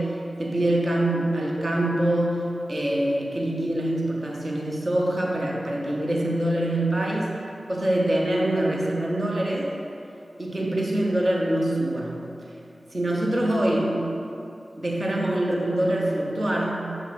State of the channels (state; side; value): normal; both; correlation 0.93